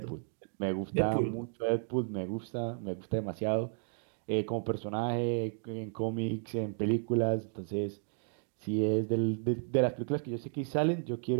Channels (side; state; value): left; silent; 56 dB below the other